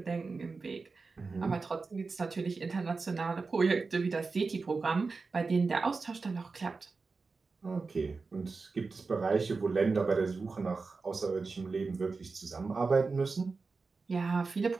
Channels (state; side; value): quieter; left; 4.3 dB